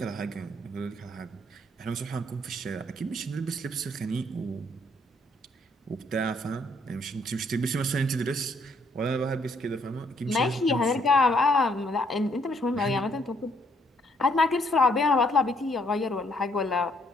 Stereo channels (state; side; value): normal; both; correlation 0.69